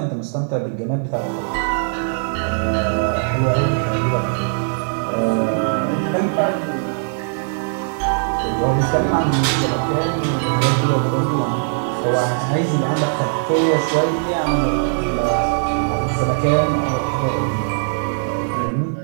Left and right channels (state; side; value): silent; left; 66 dB below the other